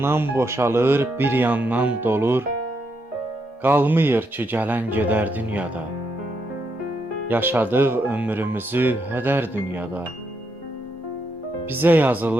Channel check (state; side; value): normal; both; correlation 0.80